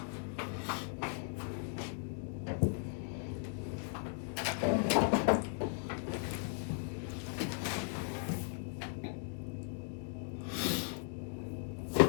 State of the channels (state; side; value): silent; right; 53 dB below the other